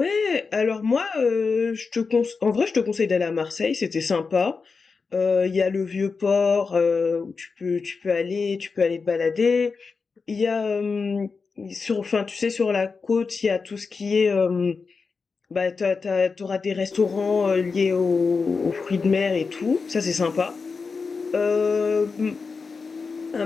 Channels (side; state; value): right; quieter; 4.8 dB